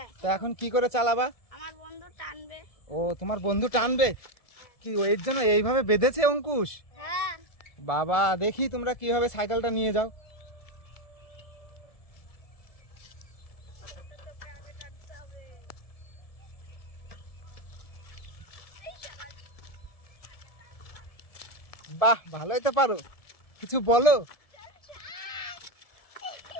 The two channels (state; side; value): late; right; 1.7 ms